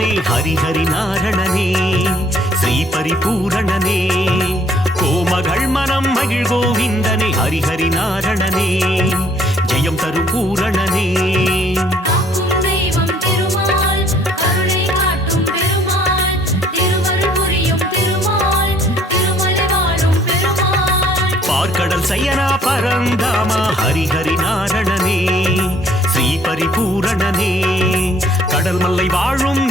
ஹரிஹரி நாரணனே ஸ்ரீ பரிபூரணனே கோமகள் மனம் மகிழ் கோவிந்தனே ஹரிஹரி நாரணனே ஜெயம் தரும் பூரணனே பார்க்கடல் சயனா பரந்தாமா ஹரிஹரி நாரணனே ஸ்ரீ பரிபூரணனே கடல் மல்லை வாழும்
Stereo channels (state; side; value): normal; both; correlation 0.61